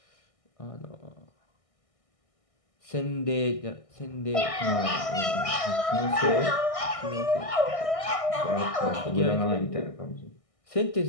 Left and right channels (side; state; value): right; late; 1.6 ms